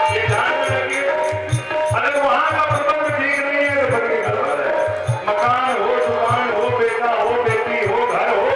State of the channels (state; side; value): identical; both; correlation 1.00